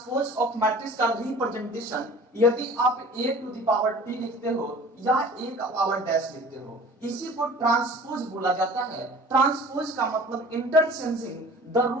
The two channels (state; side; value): normal; both; correlation 0.44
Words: ऑफ मैट्रिक्स का रिप्रेजेंटेशन यदि आप a to the power t लिखते हो या a का पावर डैश लिखते हो, इसी को ट्रांसपोज बोला जाता है। ट्रांसपोज का मतलब interchanging the